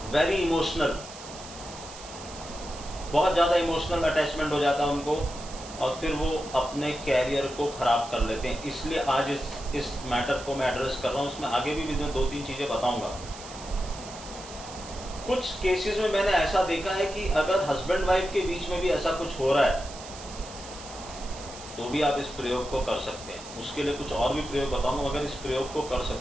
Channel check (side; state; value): right; noise; hiss, 15 dB below the sound